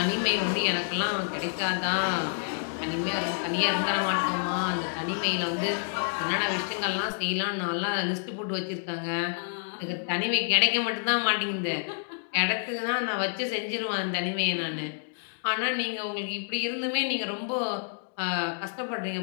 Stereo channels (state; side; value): silent; right; digital silence